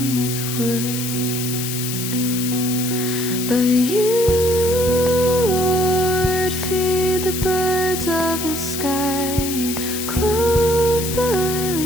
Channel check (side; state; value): left; noise; hiss, 5 dB below the sound